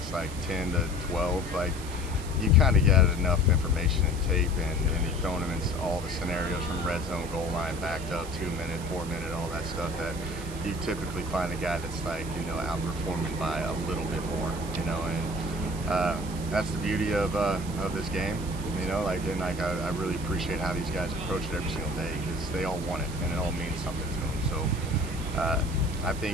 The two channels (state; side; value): noise; right; hiss, 15 dB below the sound